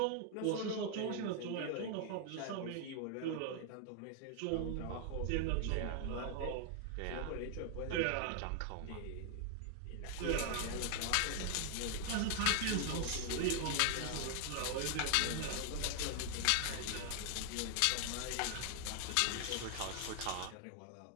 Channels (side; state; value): both; different; correlation 0.00